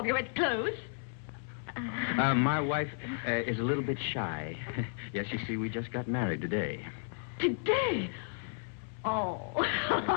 your wet clothes. My wife is a little bit shy. Yes, you see, we just got married today. Today? Oh. Oh,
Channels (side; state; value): right; silent; 56 dB below the other